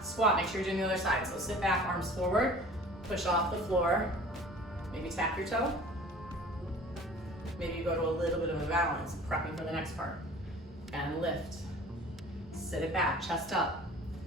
squat. Make sure you're doing the other side. So sit back, arms forward, push off the floor. Maybe tap your toe. Maybe you go to a little bit of a balance, prepping for the next part. And lift. Sit it back, chest up.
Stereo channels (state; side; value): normal; both; correlation 0.45